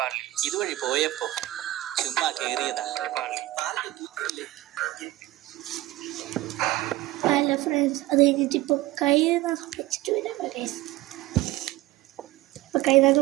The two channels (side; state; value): left; quieter; 17.1 dB